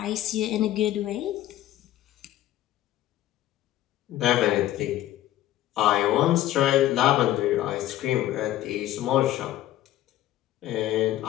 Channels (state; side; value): quieter; right; 13.8 dB